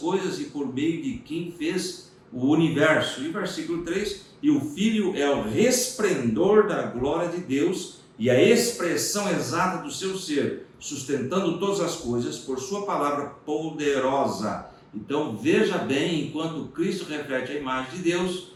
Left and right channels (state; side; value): identical; both; correlation 1.00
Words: e por meio de quem fez o universo. E versículo 3, e o Filho é o resplendor da glória de Deus e a expressão exata do seu ser, sustentando todas as coisas por sua palavra poderosa. Então veja bem, enquanto Cristo reflete a imagem de Deus,